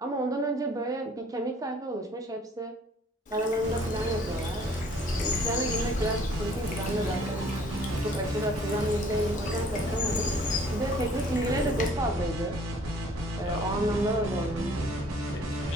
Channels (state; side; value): normal; both; correlation 0.56